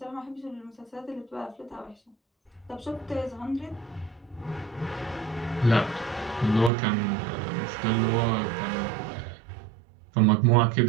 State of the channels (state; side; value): drops out; left; at 6.7 s